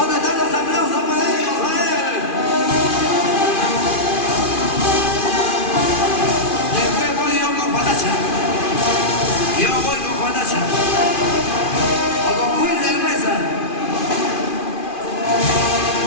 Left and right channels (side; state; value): right; late; 2.4 ms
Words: están los aplausos para ellos? A ver. Después voy yo con Juanacha. Yo voy con Juanacha. O con Wilder Mesa.